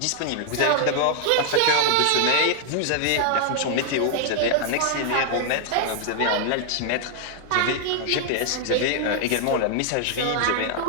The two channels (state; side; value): different; both; correlation 0.00